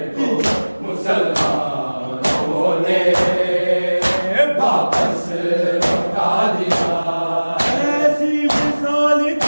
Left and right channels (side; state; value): both; inverted; correlation -1.00